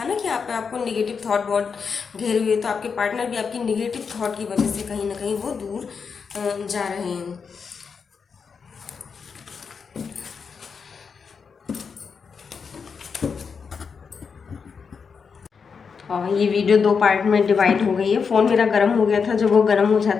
ना कि आपको नेगेटिव थॉट बहुत घेरे हुए, तो आपके पार्टनर भी आपकी नेगेटिव थॉट की वजह से कहीं ना कहीं वो दूर जा रहे हैं। और ये वीडियो 2 पार्ट में डिवाइड हो गई है। फ़ोन मेरा गर्म हो गया था, जब वो गर्म हो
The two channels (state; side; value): quieter; right; 5.8 dB